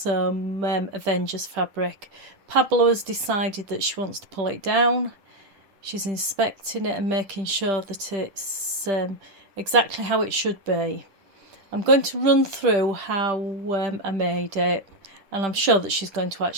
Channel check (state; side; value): late; left; 10 ms